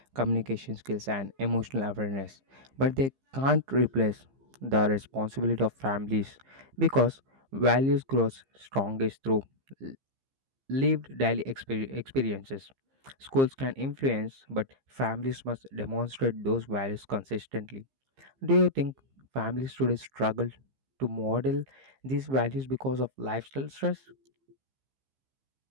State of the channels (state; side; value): late; left; 15 ms